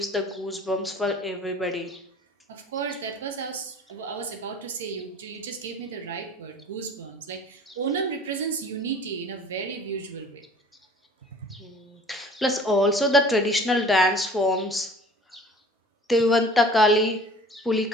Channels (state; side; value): normal; both; correlation 0.46